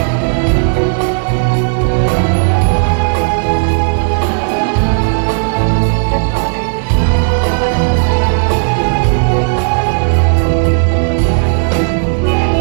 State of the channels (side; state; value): left; silent; digital silence